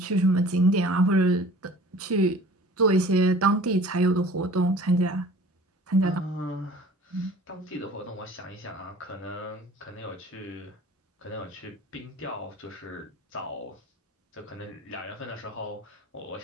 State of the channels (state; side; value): normal; both; correlation 0.46